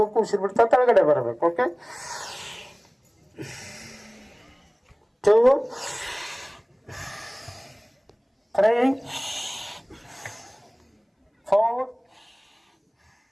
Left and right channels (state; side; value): identical; both; correlation 1.00